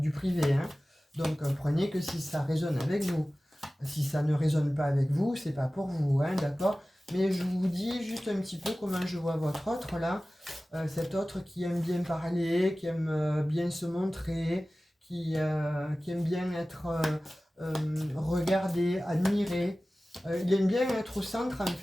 privé. Hein. Donc prenez que si ça résonne avec vous. Si ça ne résonne pas avec vous, c'est pas pour vous, hein, d'accord? Mais je vous dis juste un petit peu comment je vois votre autre là. Cet autre qui aime bien parler, qui aime bien se montrer, qui aime bien être regardé, admiré. Il aime bien être au centre en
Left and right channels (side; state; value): both; normal; correlation 0.97